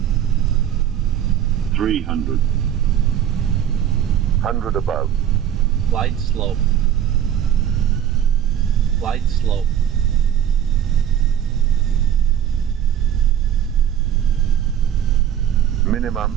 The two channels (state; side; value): quieter; left; 10.1 dB